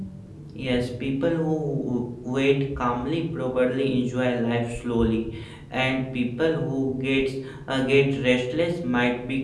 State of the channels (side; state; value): both; identical; correlation 1.00